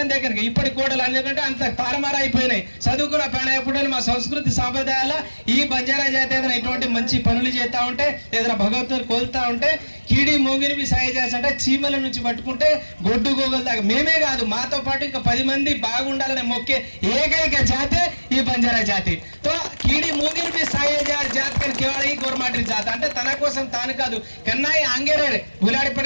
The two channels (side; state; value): both; inverted; correlation -1.00